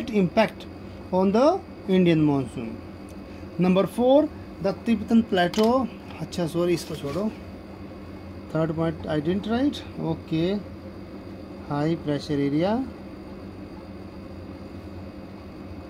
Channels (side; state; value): both; identical; correlation 1.00